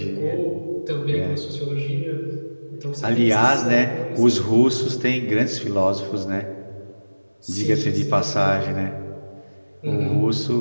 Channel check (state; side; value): inverted; both; correlation -1.00